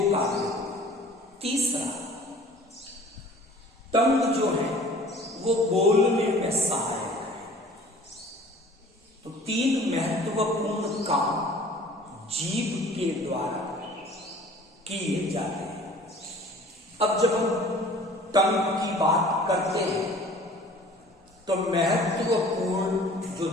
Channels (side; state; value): both; normal; correlation 0.48